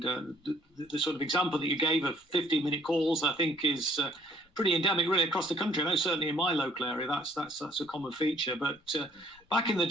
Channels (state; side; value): normal; both; correlation 0.61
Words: the sort of example that you gave of 15-minute calls, I think, is pretty endemic really across the country. I know certainly in my local area that's a common feature. But back in the